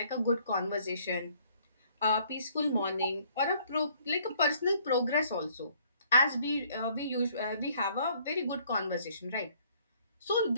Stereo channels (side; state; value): both; inverted; correlation -0.62